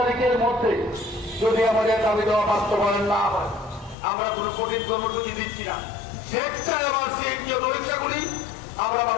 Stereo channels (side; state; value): right; drops out; at 4.0 s